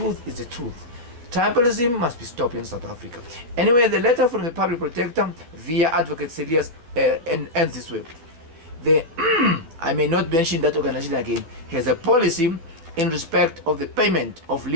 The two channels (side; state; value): left; late; 12 ms